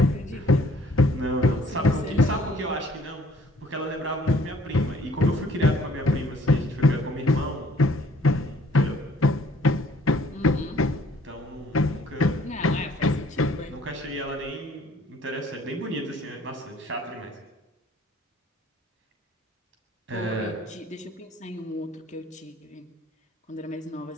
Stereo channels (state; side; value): normal; both; correlation 0.59